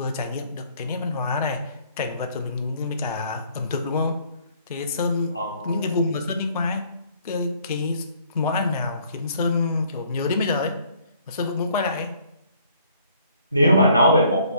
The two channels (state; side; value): inverted; both; correlation -0.61